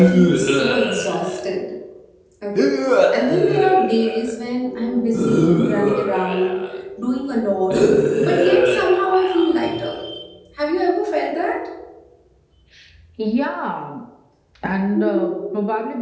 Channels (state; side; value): identical; both; correlation 1.00